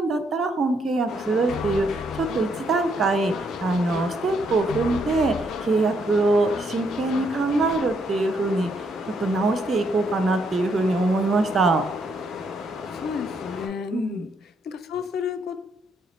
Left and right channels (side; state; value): both; normal; correlation 0.74